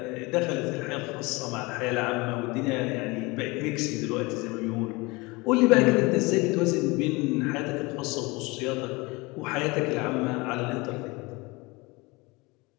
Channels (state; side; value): quieter; right; 24.6 dB